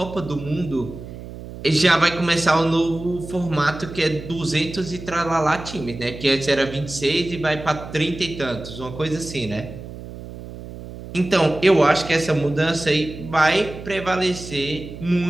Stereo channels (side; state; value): right; noise; hum, 13 dB below the sound